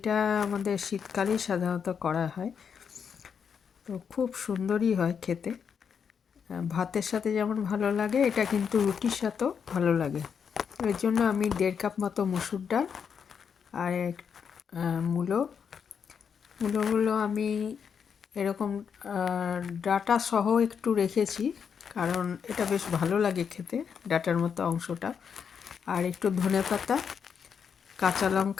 আমাদের শীতকালেই সাধারণত করা হয়, তো খুব সুন্দরই হয় খেতে। ভাতের সাথে যেমন ভালো লাগে, এটা কিন্তু রুটির সাথেও ভালো লাগে। এর জন্য আমি 1.5 কাপ মতো মুসুর ডাল আর মূলোগুলো আমি এরকম ডাটা সহ একটু রেখেছি, কারণ এটা বেশ ভালো লাগে খেতে, ডাটার মতো অংশটা। আর একটু ধনেপাতা, কাঁচা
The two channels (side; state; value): right; quieter; 6.9 dB